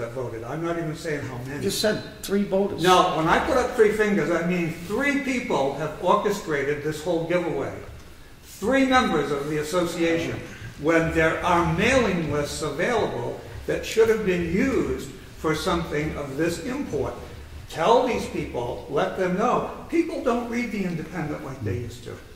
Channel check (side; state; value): both; identical; correlation 1.00